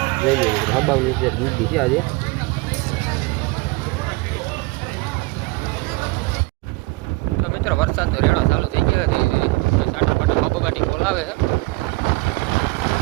જઈ લે મિત્રો હબાવની ટ્રેક દીધી છે આજે. તો મિત્રો વરસાદ તો રેડા ચાલુ થઈ ગયા ધીરે ધીરે. સાટા પાટા બબગાટી બોલાવે છે.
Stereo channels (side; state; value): left; quieter; 24.3 dB